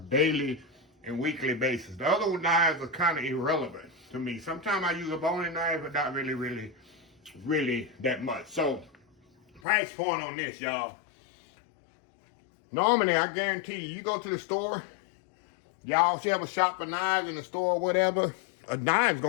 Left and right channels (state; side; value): drops out; right; at 9.6 s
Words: and weekly basis. The other knives are kind of irrelevant to me. Sometimes I use a boning knife, but not really that much. So, price point on this, y'all. Normally, I guarantee you go to the store, y'all should have a shop for knives in the store or whatever. A knife's